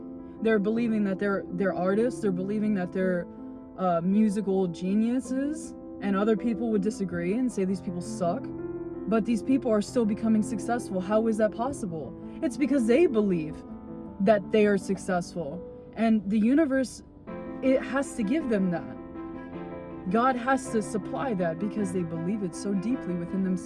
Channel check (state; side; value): identical; both; correlation 1.00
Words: They're believing that they're artists. They're believing that they're musical geniuses. And other people would disagree and say these people suck. But these people are still becoming successful. How is that possible? It's because they believe that they are successful. And the universe, it has to give them that. God has to supply that because they believe it so deeply within